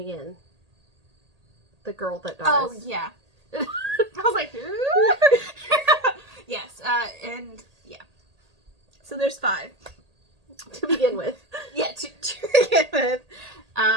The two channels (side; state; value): left; late; 1.8 ms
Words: the girl that dies. Oh yeah. I was like, yes, and yeah. So there's 5 to begin with. Yeah, to begin with.